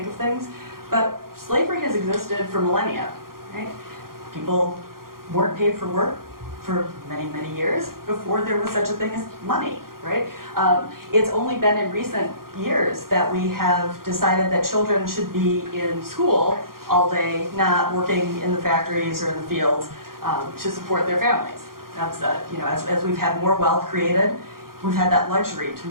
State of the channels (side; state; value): left; late; 0.92 ms